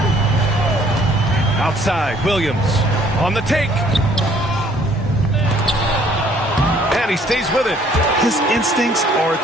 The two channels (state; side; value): normal; both; correlation 0.60